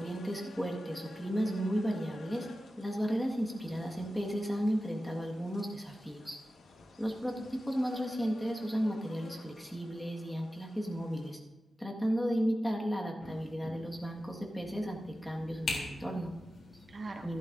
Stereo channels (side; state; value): both; normal; correlation 0.94